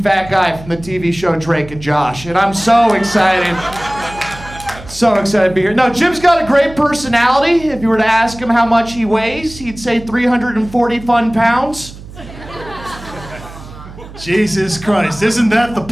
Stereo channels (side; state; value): right; noise; hum, 16 dB below the sound